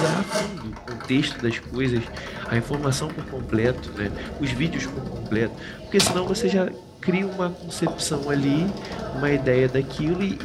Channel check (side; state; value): both; identical; correlation 1.00